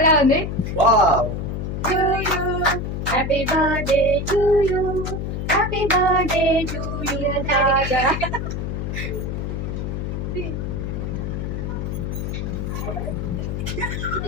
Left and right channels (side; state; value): left; noise; hum, 3 dB below the sound